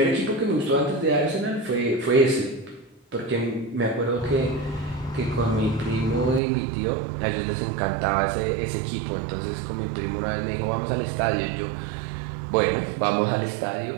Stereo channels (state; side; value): drops out; left; at 6.4 s